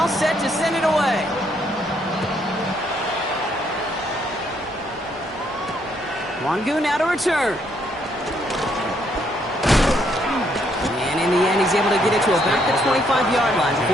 set to send it away. Wangu now to return. And in the end, he's able to get it to about the 25-yard line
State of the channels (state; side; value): normal; both; correlation 0.72